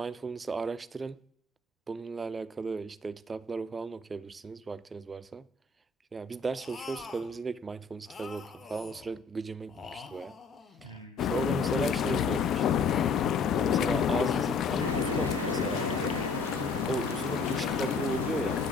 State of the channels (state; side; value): quieter; right; 3.9 dB